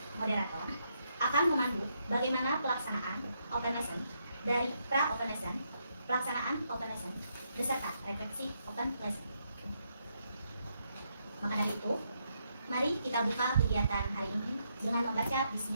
moderator akan memandu bagaimana pelaksanaan Open Lesson dari pra Open Lesson, pelaksanaan Open Lesson, beserta refleksi Open Lesson. Maka dari itu, mari kita buka kegiatan hari ini dengan membaca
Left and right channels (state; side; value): inverted; both; correlation -0.78